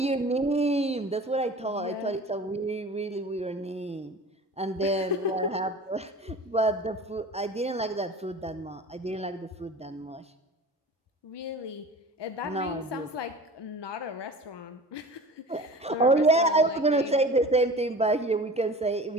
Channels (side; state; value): both; normal; correlation 0.39